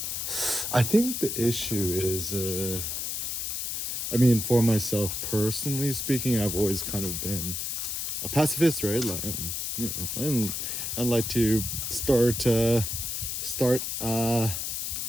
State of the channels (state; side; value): noise; left; hiss, 3 dB below the sound